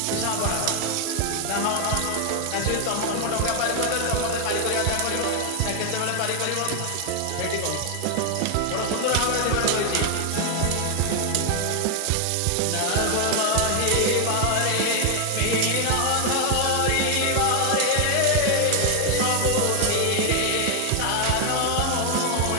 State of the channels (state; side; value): different; both; correlation 0.00